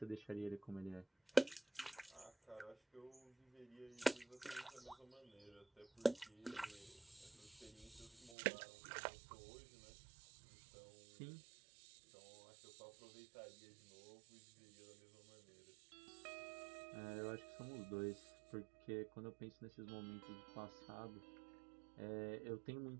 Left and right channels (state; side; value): drops out; left; at 8.3 s